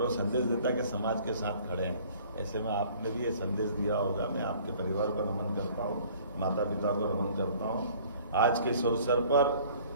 वो संदेश देता है कि समाज के साथ खड़े हैं। ऐसे में आपने भी ये संदेश दिया होगा। मैं आपके परिवार को नमन करता हूँ, माता पिता को नमन करता हूँ। आज के इस अवसर पर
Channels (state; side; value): inverted; both; correlation -0.53